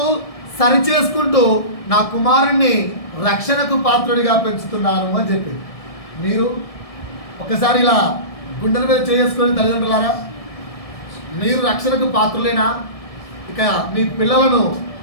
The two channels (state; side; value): late; right; 1.7 ms